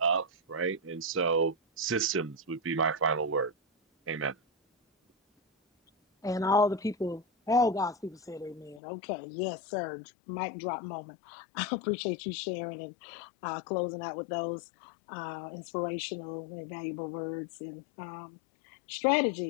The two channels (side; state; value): right; drops out; at 8.8 s